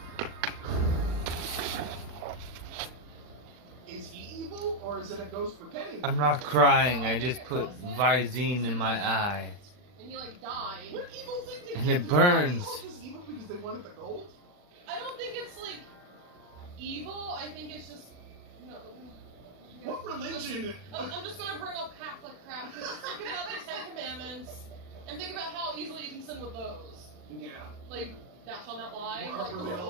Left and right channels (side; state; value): left; late; 39 ms